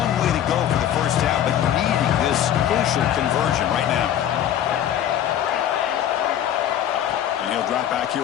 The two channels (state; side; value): quieter; right; 10.6 dB